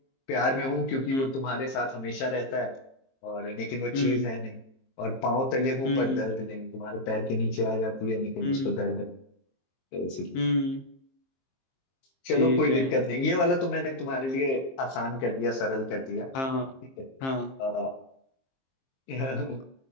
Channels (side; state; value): right; late; 23 ms